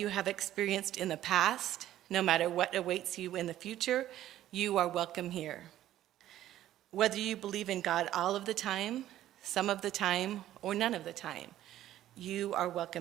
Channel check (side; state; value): left; quieter; 13.0 dB